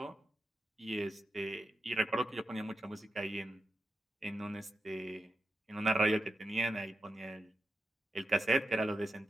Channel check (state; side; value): normal; both; correlation 0.87